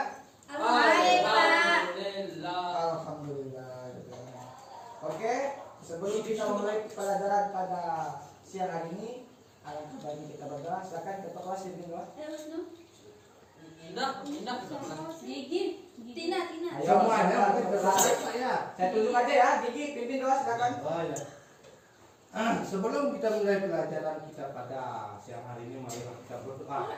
Baik, Pak. Alhamdulillah. Oke, sebelum kita mulai pelajaran pada siang hari ini, alangkah baiknya kita berdoa. Silakan ketua kelas berdoa. Gigi. Tina. Ayo, Semuanya silakan berdoa, berdoa. Pak, ya. Saya tunjuk aja ya, Gigi pimpin doa silakan. Oh ya. Sebelum kita mulai pelajaran kita pada siang hari ini, mari kita berdoa.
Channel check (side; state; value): both; identical; correlation 1.00